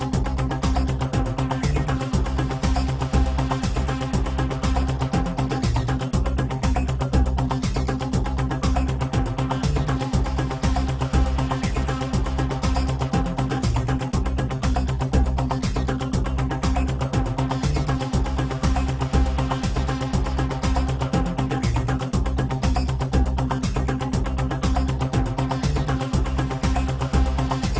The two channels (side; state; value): both; identical; correlation 1.00